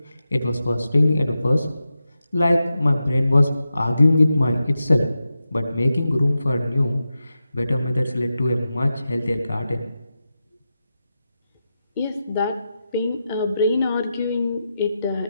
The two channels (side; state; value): both; inverted; correlation -0.90